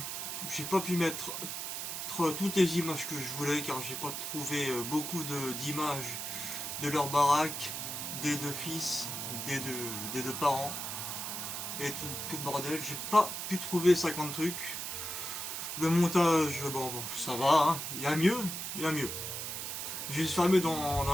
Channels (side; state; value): right; noise; hiss, 4 dB below the sound